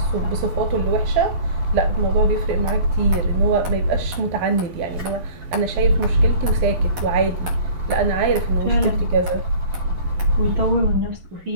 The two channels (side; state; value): left; late; 11 ms